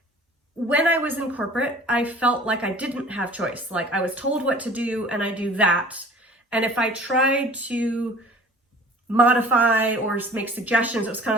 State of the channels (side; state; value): both; normal; correlation 0.47